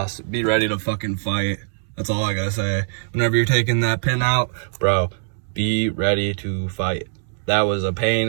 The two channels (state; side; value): silent; left; digital silence